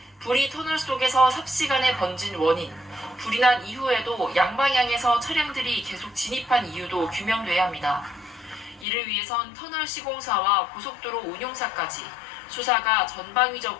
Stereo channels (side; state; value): right; drops out; at 8.8 s